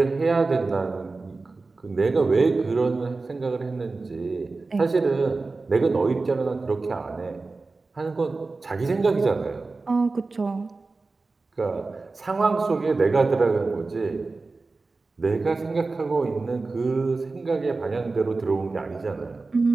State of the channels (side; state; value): left; quieter; 3.7 dB